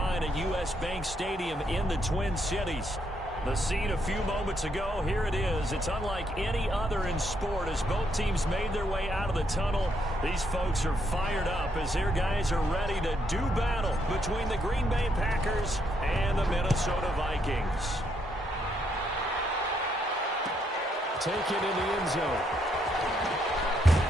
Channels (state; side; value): normal; both; correlation 0.75